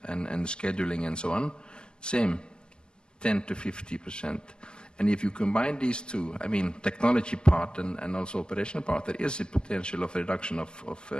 and scheduling and so on. Same, 10 to 50%. And if you combine these two, I mean, technology part and also operational part, there is a potential of reduction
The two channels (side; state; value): right; late; 0.050 ms